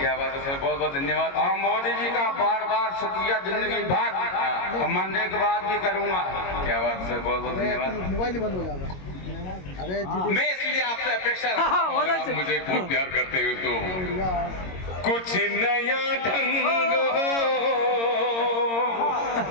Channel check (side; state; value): right; late; 22 ms